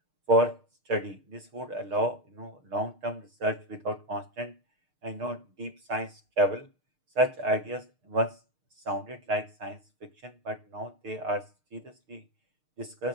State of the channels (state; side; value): late; left; 6.5 ms